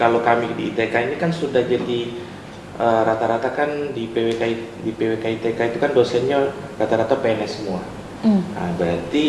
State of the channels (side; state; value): both; identical; correlation 1.00